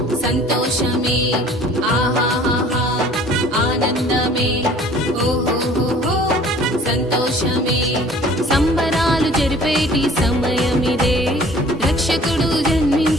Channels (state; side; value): normal; both; correlation 0.51